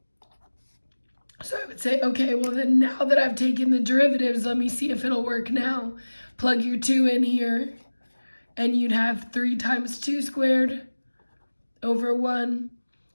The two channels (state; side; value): inverted; both; correlation -1.00